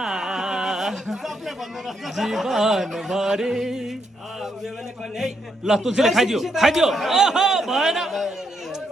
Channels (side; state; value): both; normal; correlation 0.78